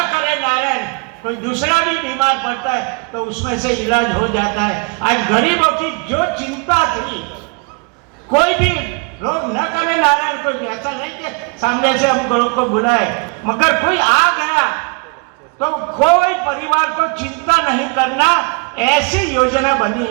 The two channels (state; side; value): quieter; left; 32.0 dB